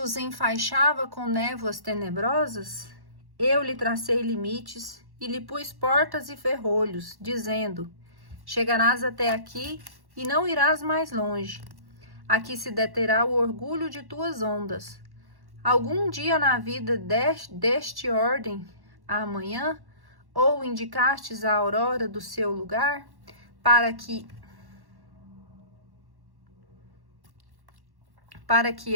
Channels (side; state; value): left; late; 1.1 ms